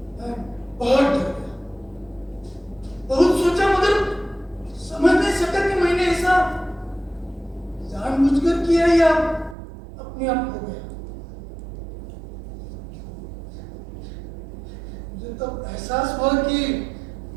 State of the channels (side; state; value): left; drops out; at 9.6 s